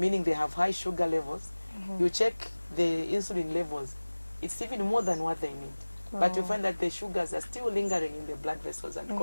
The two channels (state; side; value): inverted; both; correlation -1.00